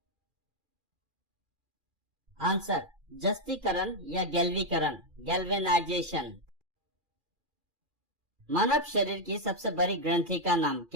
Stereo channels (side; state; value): left; late; 2.4 ms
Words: आंसर जस्तीकरण या गैल्वीकरण, गैल्वेनाइजेशन। मानव शरीर की सबसे बड़ी ग्रंथि का नाम